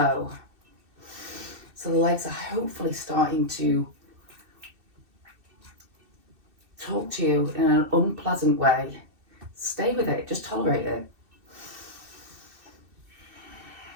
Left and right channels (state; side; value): late; left; 2.6 ms